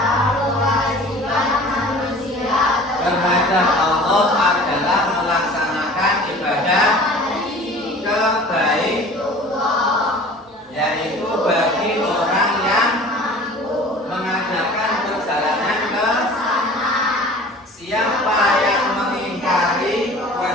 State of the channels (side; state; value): both; normal; correlation 0.44